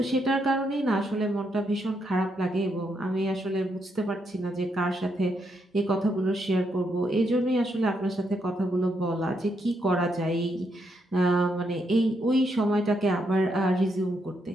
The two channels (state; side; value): normal; both; correlation 0.78